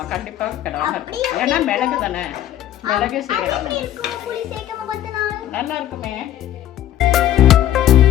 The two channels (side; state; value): right; quieter; 12.1 dB